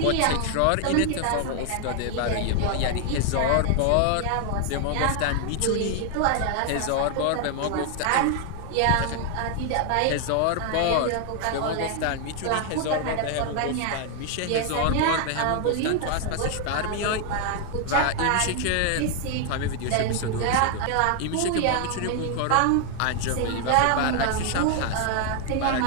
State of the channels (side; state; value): both; different; correlation 0.00